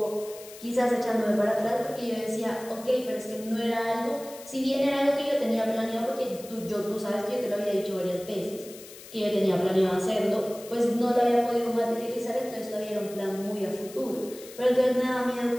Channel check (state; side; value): noise; left; hiss, 17 dB below the sound